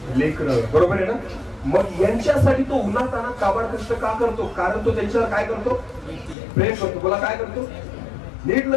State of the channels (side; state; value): right; drops out; at 6.4 s